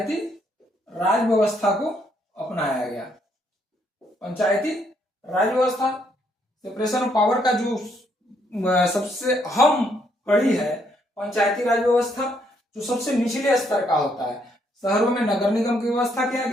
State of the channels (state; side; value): normal; both; correlation 0.72